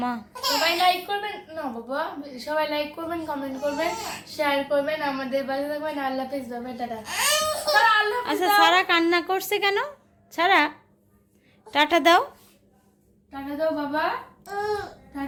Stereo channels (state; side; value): identical; both; correlation 1.00